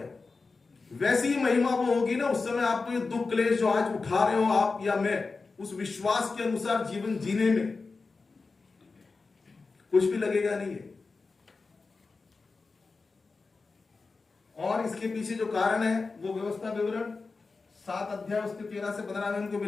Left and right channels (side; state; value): right; quieter; 4.1 dB